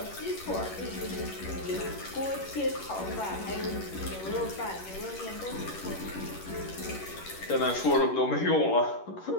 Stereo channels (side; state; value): right; late; 11 ms